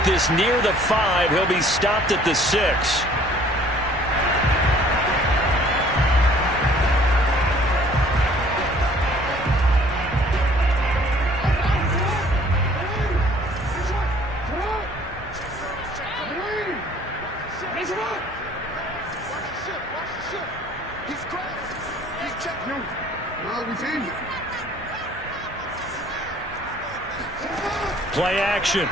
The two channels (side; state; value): both; normal; correlation 0.55